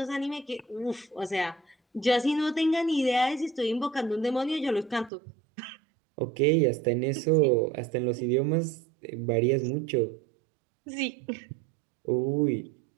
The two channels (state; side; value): drops out; left; at 5.1 s